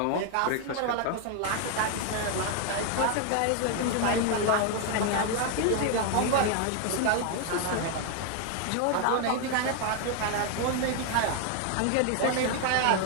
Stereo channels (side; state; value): both; different; correlation 0.01